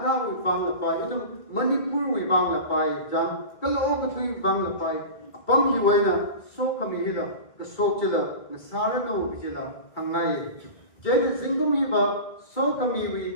wibang lapay, idong Manipur wibang lapay, jang kaloo katui wibang lapay, apam hi waina, so kami hila, kasok chila, nasara na wabijila, hangay. Jayta zingkum hi ba, so kami wi,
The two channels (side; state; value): right; late; 2.3 ms